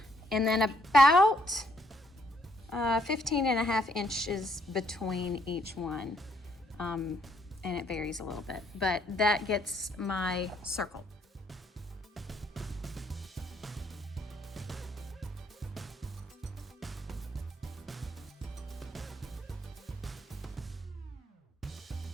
and then about 15.5 inches between each one, and it varies a little bit, but that gets my circle.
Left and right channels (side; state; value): both; normal; correlation 0.70